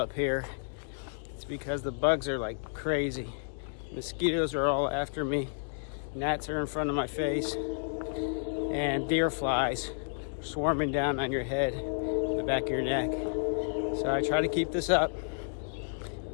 here. It's because the bugs are like crazy. Mosquitoes are all after me. Gnats are in front of my face. And deer flies swarming down on your head, the back of your neck. So I try to keep this up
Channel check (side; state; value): right; silent; digital silence